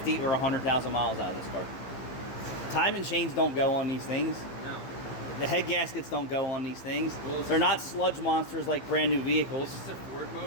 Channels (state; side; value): late; right; 15 ms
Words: or 100,000 miles out of this car. Timing chains don't go on these things. No. The head gaskets don't go on these things. Well, they're not sludge monsters like brand new vehicles. Is this a Ford